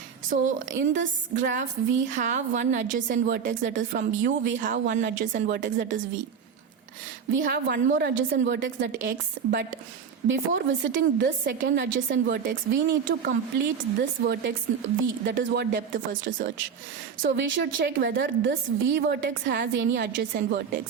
So in this graph we have one adjacent vertex, that is from U. We have one adjacent vertex, that is V. We have one more adjacent vertex, that X, but before visiting this second adjacent vertex we need to complete this vertex V, that is what depth first search. So we should check whether this V vertex has any adjacent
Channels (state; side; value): quieter; left; 6.9 dB